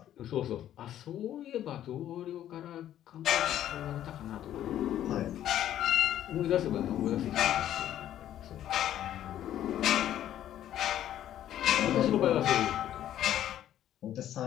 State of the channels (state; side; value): quieter; right; 11.7 dB